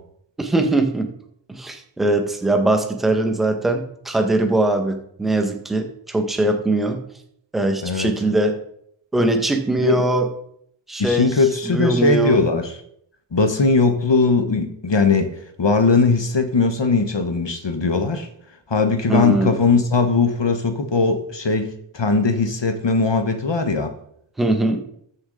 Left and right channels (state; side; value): normal; both; correlation 0.18